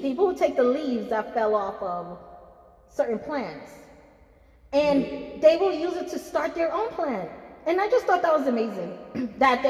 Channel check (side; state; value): both; identical; correlation 1.00